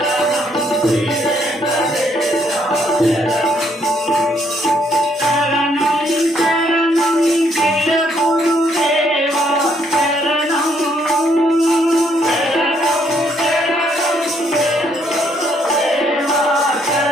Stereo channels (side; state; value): both; normal; correlation 0.71